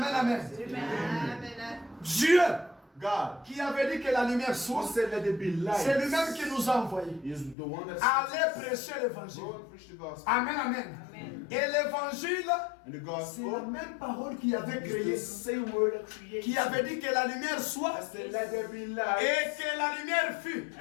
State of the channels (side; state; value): right; drops out; at 7.6 s